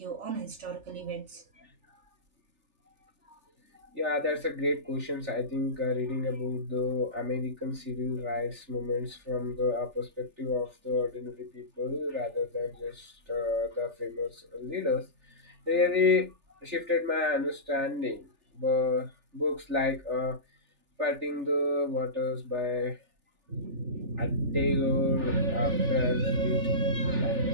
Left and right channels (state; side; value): late; left; 3.4 ms